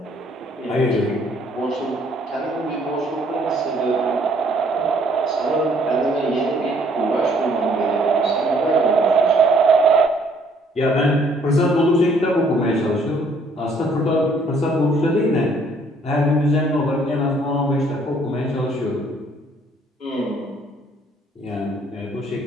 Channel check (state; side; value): normal; both; correlation 0.63